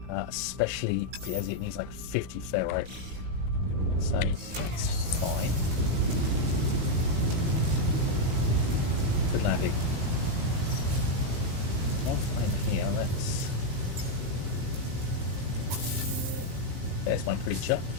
especially as it needs like 50 ferrite. So that's fine. Good landing. One flame here, there's my creature.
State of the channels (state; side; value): late; left; 17 ms